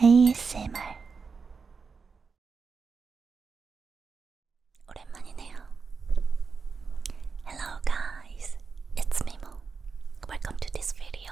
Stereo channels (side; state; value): left; quieter; 5.1 dB